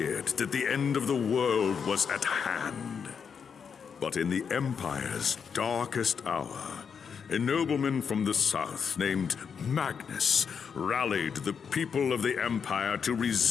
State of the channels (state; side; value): quieter; right; 6.6 dB